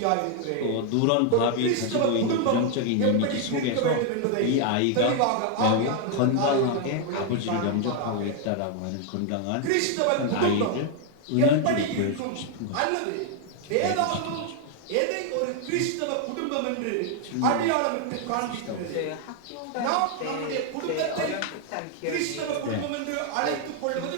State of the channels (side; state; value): both; different; correlation 0.00